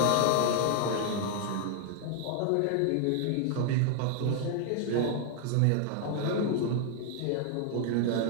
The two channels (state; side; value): different; both; correlation 0.00